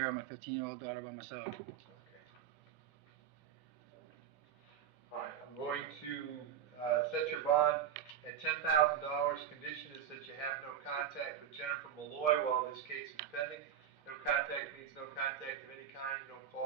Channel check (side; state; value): left; quieter; 9.0 dB